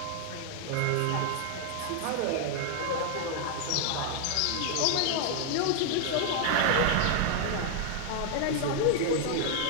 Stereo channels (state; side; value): different; both; correlation 0.00